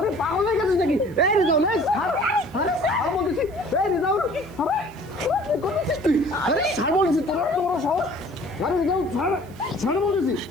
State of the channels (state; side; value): noise; right; hiss, 28 dB below the sound